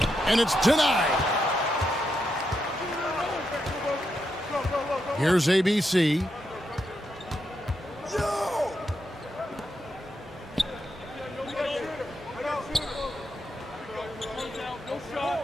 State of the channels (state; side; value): normal; both; correlation 0.83